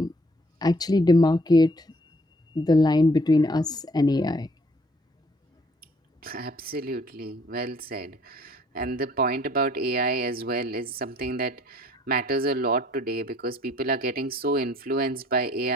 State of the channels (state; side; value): normal; both; correlation 0.60